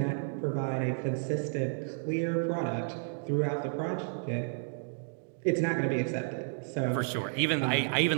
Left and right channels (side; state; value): left; silent; digital silence